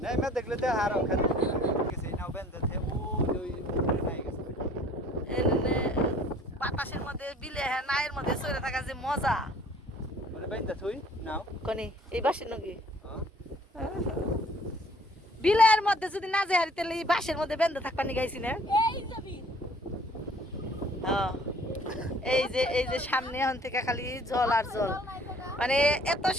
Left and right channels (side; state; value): both; normal; correlation 0.55